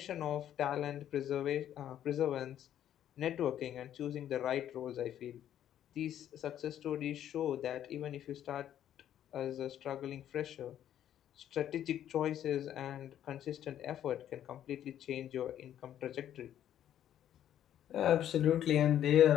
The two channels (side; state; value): right; quieter; 10.9 dB